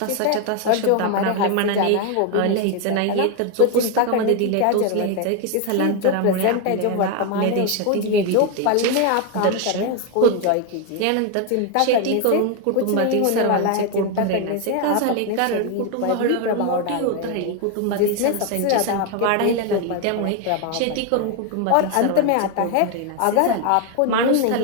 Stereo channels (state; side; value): different; both; correlation 0.01